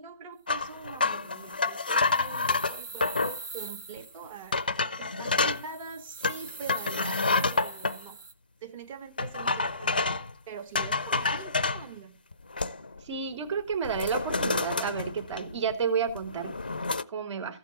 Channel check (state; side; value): inverted; both; correlation -0.47